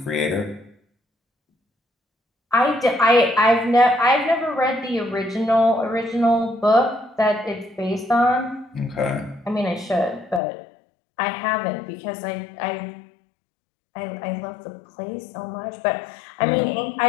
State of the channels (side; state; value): right; drops out; at 10.4 s